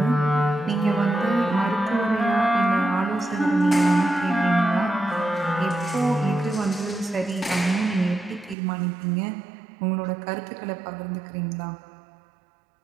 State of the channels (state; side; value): drops out; left; at 8.6 s